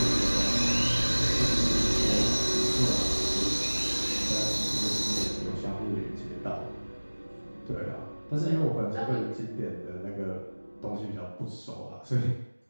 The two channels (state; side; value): inverted; both; correlation -1.00